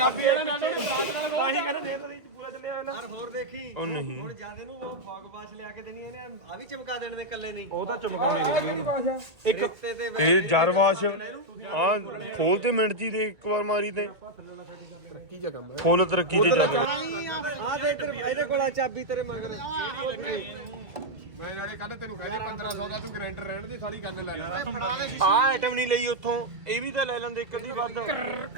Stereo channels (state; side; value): late; left; 1.8 ms